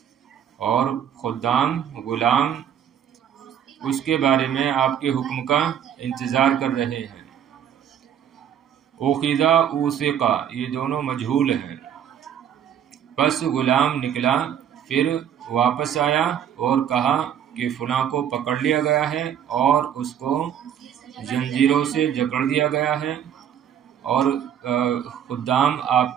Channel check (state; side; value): quieter; left; 9.2 dB